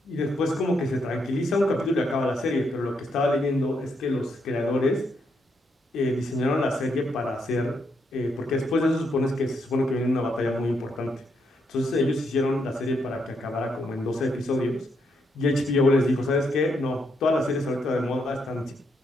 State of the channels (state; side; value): normal; both; correlation 0.77